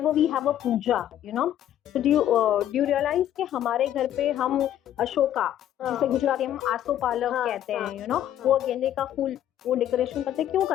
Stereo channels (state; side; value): quieter; right; 11.4 dB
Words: we have a puja, you know. So do you realize कि हमारे घर पे हम अशोका, जिसे गुजराती में हम आसोपालव कहते हैं, you know, वो गेंदे का फूल वो डेकोरेशन करते हैं, क्यों